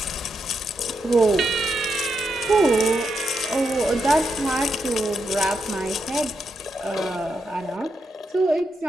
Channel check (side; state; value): both; normal; correlation 0.83